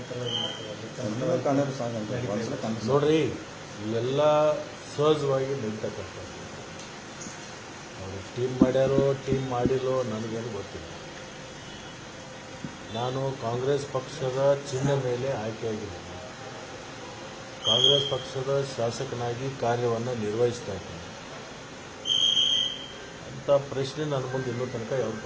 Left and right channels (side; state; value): both; identical; correlation 1.00